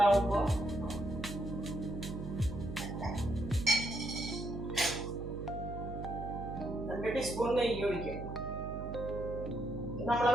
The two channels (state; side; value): noise; right; hum, 7 dB below the sound